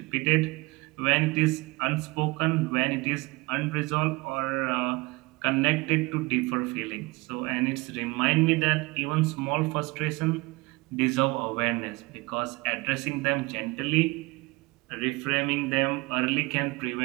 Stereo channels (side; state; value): left; quieter; 24.0 dB